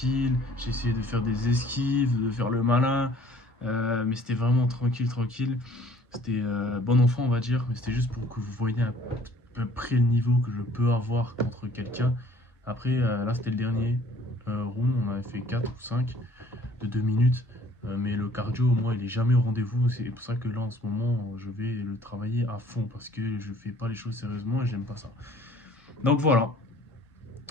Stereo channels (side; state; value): both; normal; correlation 0.55